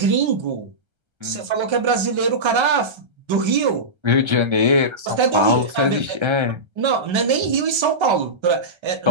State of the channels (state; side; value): late; left; 1.3 ms